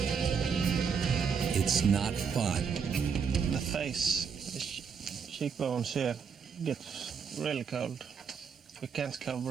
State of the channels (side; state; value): left; quieter; 6.3 dB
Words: It's not fun. The face, the cheekbones here, gets really cold. We can't